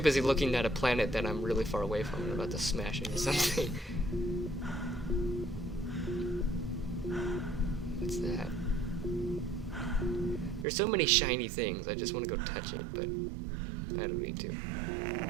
busy looking at a planet that I'm really far away from and about to smash into something. What's that? There's so many shiny things, I just want to go touch it, but I don't need to.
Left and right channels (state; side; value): drops out; left; at 10.7 s